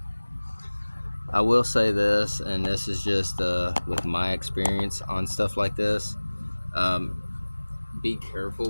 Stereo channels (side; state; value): both; inverted; correlation -1.00